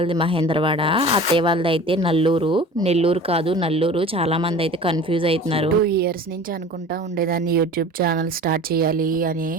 మహేంద్రవాడ, అత్తయ్య వాళ్ళది అయితే నల్లూరు. నెల్లూరు కాదు, నల్లూరు. చాలా మంది అయితే కన్ఫ్యూజ్ అవుతున్నారు. 2 years నుంచి అనుకుంటా ఉండేదాన్ని యూట్యూబ్ ఛానల్ స్టార్ట్ చేయాలి అని.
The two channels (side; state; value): both; normal; correlation 0.40